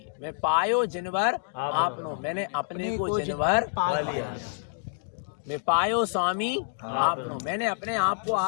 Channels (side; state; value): right; silent; digital silence